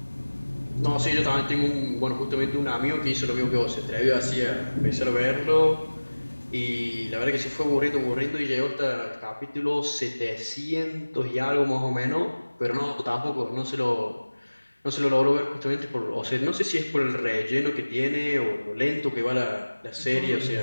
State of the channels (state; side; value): inverted; both; correlation -1.00